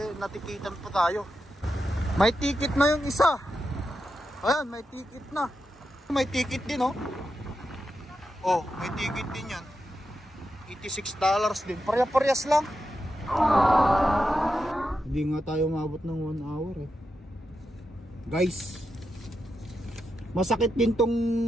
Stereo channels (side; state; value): both; normal; correlation 0.87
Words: natikitan pa tayo? May ticket na yung isa. Ayan, may ticket na. May ticket din oh. Oh, may ticket din yan. $86 din. Parehas lang. Hindi nga tayo umabot ng 1 hour eh. Guys, masakit din